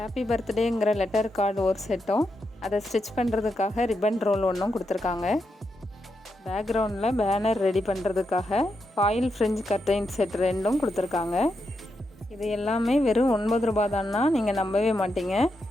பர்த்டேங்கிற லெட்டர் கார்டு ஒரு செட்டும், அதை ஸ்டிச் பண்ணுறதுக்காக ரிப்பன் ரோல் ஒன்றும் கொடுத்துருக்காங்க. பேக்ரவுண்டில் பேனர் ரெடி பண்ணுறதுக்காக ஃபாயில் ஃப்ரிஞ்ச் கர்டைன் செட் 2ம் கொடுத்துருக்காங்க. இது எல்லாமே வெறும் 9 ரூபா தான்னா நீங்கள் நம்பவே மாட்டீங்க.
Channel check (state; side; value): normal; both; correlation 0.84